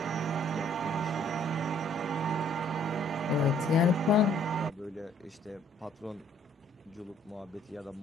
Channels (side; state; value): both; normal; correlation 0.61